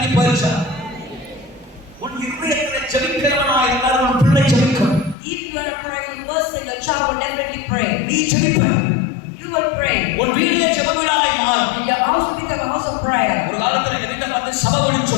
போயிருச்சா? உன் இருதயத்திலே ஜெபிக்கிறவனாய் இருந்தால் உன் பிள்ளை ஜெபிக்கும். If you are a praying person, your child will definitely pray. நீ ஜெபிப்ப. You will pray. உன் வீட்டிலே ஜெபவிடாய் மாறும். Your house will become a house of prayer. ஒரு காலத்துல எங்க வீட்டை பார்த்து சபைன்னு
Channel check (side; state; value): right; drops out; at 5.2 s